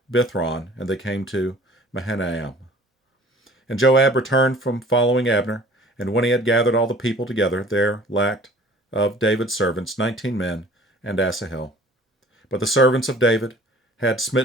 Bithron, and they came to Mahanaim. And Joab returned from following Abner, and when he had gathered all the people together, there lacked of David's servants 19 men, and Asahel. But the servants of David had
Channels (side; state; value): both; normal; correlation 0.50